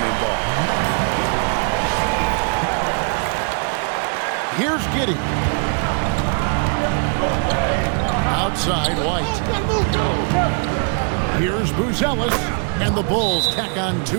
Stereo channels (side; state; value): left; quieter; 39.9 dB